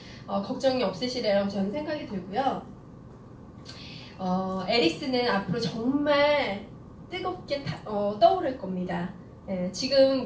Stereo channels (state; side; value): identical; both; correlation 1.00